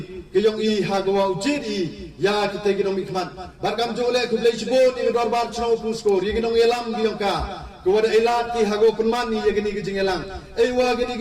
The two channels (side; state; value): both; identical; correlation 1.00